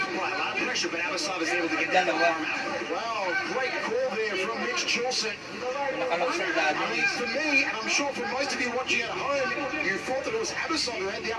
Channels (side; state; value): both; identical; correlation 1.00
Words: a lot of pressure, but Abasov is able to get that arm out. Wow, great call there from Mitch Chilson. For me, and I'm sure for most of you watching at home, you thought that it was Abasov who had the